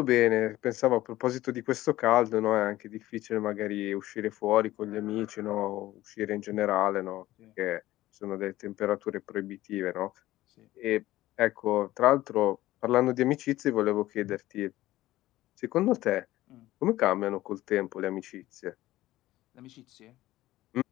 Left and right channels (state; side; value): quieter; right; 15.9 dB